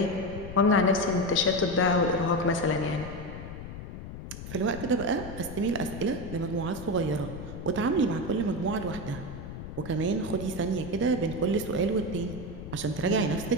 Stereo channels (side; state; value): left; noise; rumble, 10 dB below the sound